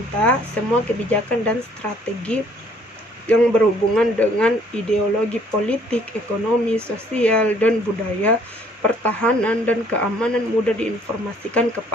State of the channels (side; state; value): both; normal; correlation 0.61